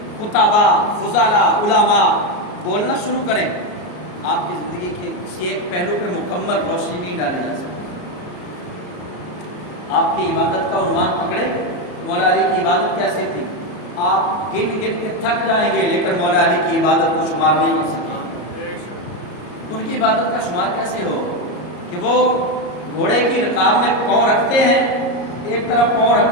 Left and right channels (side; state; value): right; late; 33 ms